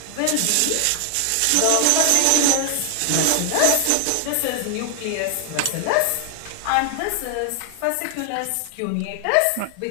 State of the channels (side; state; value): both; different; correlation 0.00